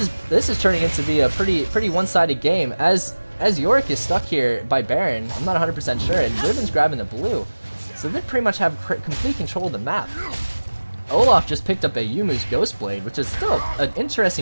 is turning into be a pretty one-sided game as Yorick is stuck here by Baron. I'm not 100% sure, and Riven's grabbing the blue, so they pretty much have complete control of the map. Olaf just picked up a Yumu's Ghostblade, which is still an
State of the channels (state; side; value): inverted; both; correlation -1.00